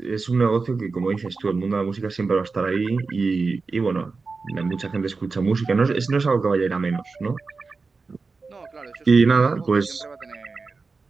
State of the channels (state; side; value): quieter; left; 4.3 dB